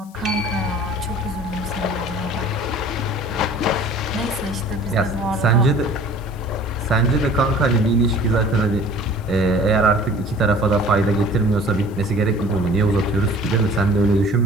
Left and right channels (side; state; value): left; noise; hiss, 27 dB below the sound